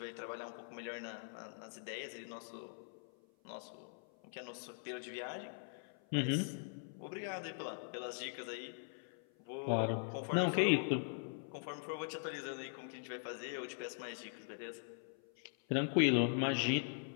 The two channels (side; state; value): right; silent; 50 dB below the other